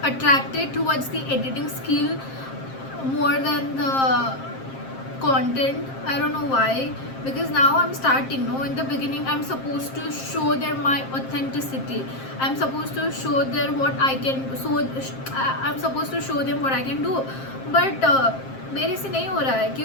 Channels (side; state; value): right; late; 7.5 ms